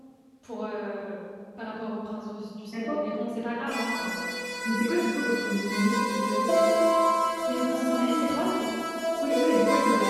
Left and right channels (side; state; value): both; identical; correlation 1.00